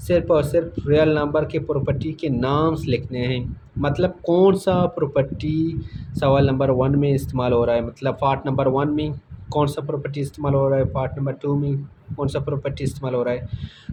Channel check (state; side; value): identical; both; correlation 1.00